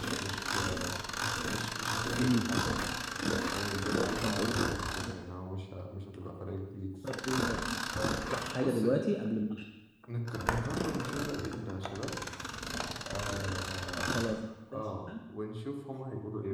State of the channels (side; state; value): both; identical; correlation 1.00